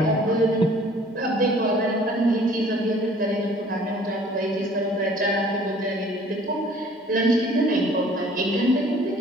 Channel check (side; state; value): both; normal; correlation 0.53